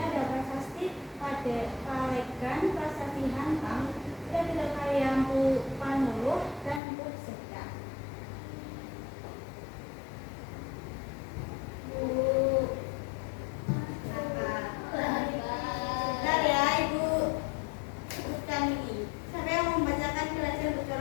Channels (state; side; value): drops out; right; at 6.8 s